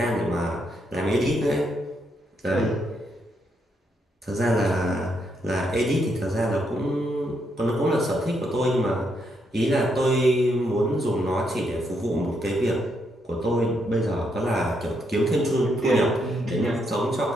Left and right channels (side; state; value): both; normal; correlation 0.77